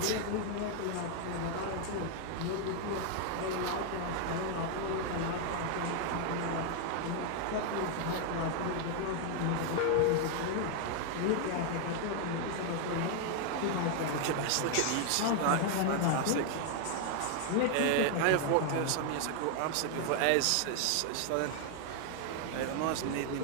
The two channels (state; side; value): different; both; correlation 0.00